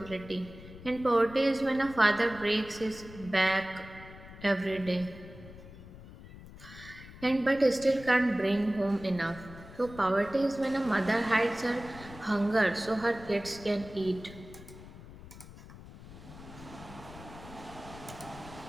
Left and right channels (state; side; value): noise; left; rumble, 17 dB below the sound